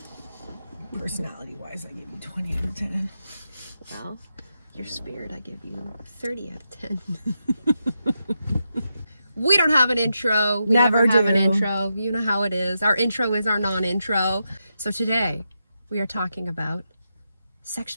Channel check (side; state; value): both; inverted; correlation -0.86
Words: Personality-wise, I give you 20 out of 10. Well, your spirit, I give you 30 out of 10. We don't have an intro. We never have an intro. You know how it is. Our intro is our non-intro. So today, we are talking about sex